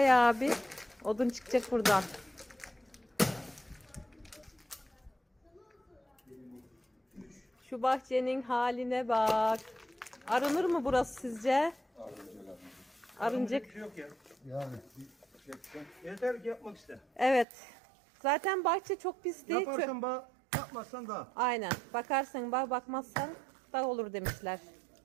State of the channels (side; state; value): left; drops out; at 17.4 s